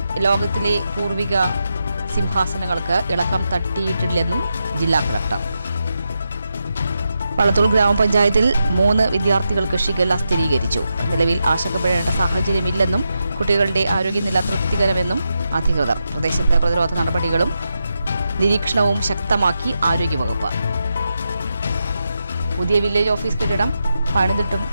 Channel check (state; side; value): inverted; both; correlation -0.87